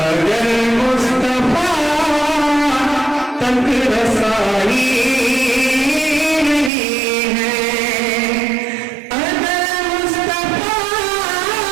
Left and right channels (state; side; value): drops out; left; at 6.7 s